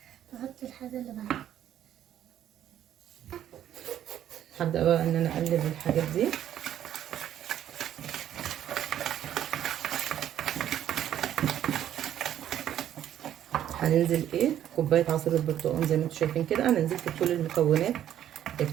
تحط الحاجة اللي بعدها. هبدأ بقى ان انا اقلب الحاجات دي. هننزل ايه كوبايه عصير البرتقال زي ما انتم شايفين كده. انا نزلت بكل المكونات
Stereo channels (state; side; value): quieter; left; 11.0 dB